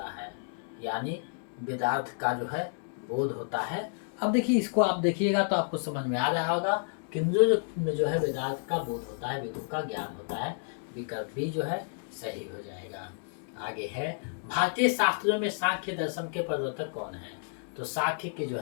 है? यानी वेदार्थ का जो है बोध होता है। अब देखिए इसको आप देखिएगा तो आपको समझ में आ रहा होगा किंजो में जो है वेदार्थ का बोध होता है, वेदों का ज्ञान होता है। विकल्प बी जो है सही हो जाएगा। आगे है भारतीय शास्त्रों में सांख्य दर्शन के प्रवर्तक कौन है? तो सांख्य के जो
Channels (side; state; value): right; silent; digital silence